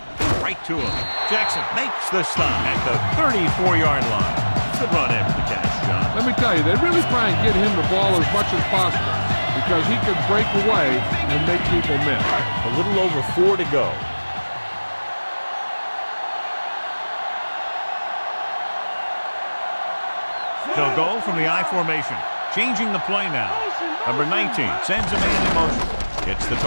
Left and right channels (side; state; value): both; inverted; correlation -1.00